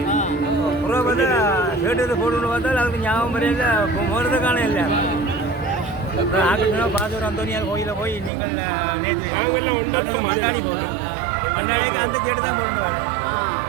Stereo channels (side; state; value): left; drops out; at 8.3 s